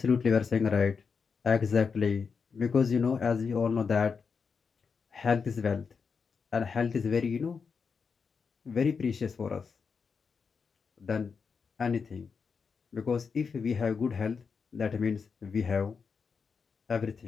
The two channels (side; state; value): right; quieter; 5.6 dB